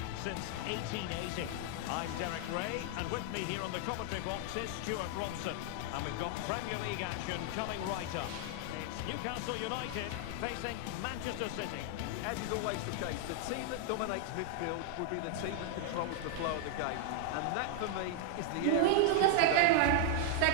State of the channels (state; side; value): different; both; correlation -0.01